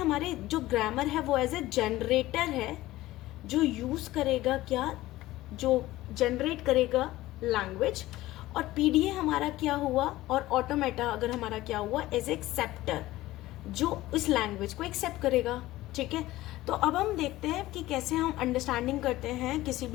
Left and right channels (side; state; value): right; quieter; 16.8 dB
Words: जो ग्रामर है वो एज ए जनरेटर है, जो यूज करेगा क्या, जो जनरेट करेगा लैंग्वेज, और PDA हमारा क्या हुआ, और ऑटोमेटा अगर हमारा क्या हुआ, एज एक्सेप्टर, जो इस लैंग्वेज को एक्सेप्ट करेगा। ठीक है। तो अब हम देखते हैं कि कैसे हम अंडरस्टैंडिंग करते हैं किसी